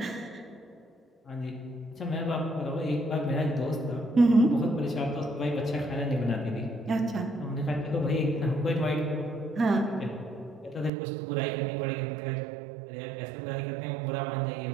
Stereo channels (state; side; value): drops out; left; at 10.9 s